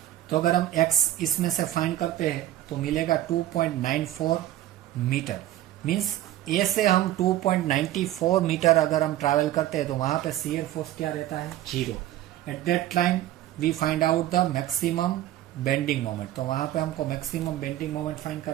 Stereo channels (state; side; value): quieter; left; 13.8 dB